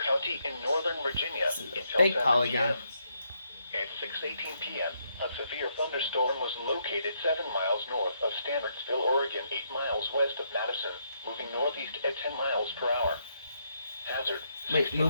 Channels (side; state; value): both; inverted; correlation -0.76